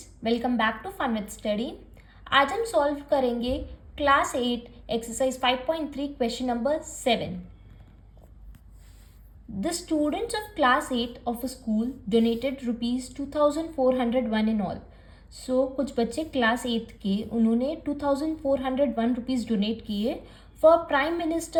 welcome back to fun with study. आज हम solve करेंगे class 8 exercise 5.3 question number 7। The students of class 8 of a school donated ₹2401 in all. So कुछ बच्चे class 8 के उन्होंने 2401 rupees donate किए for prime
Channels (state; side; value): identical; both; correlation 1.00